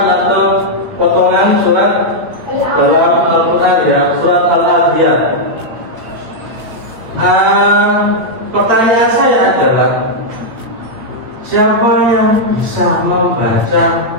atau potongan surat dalam Al-Quran ya, surat Al-Adiyat. Pertanyaan saya adalah, siapa yang bisa membaca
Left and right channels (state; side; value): late; left; 8.5 ms